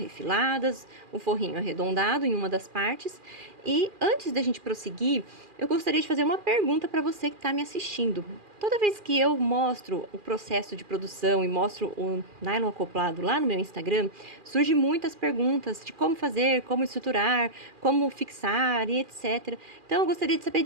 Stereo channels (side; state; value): left; late; 2.4 ms